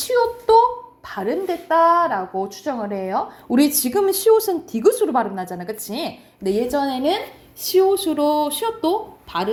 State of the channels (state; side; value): identical; both; correlation 1.00